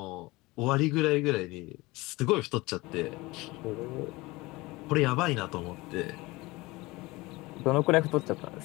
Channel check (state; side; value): quieter; right; 21.8 dB